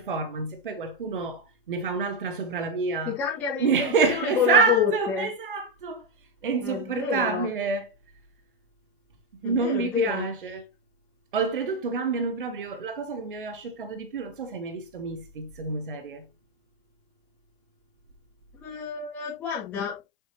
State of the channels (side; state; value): both; normal; correlation 0.06